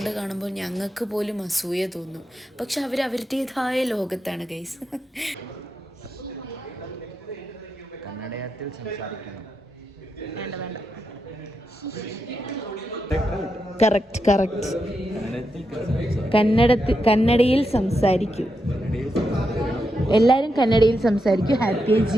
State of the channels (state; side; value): normal; both; correlation 0.85